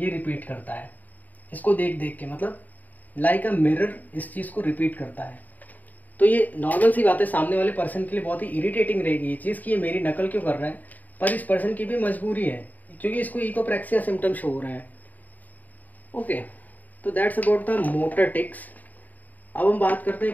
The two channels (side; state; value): right; late; 0.081 ms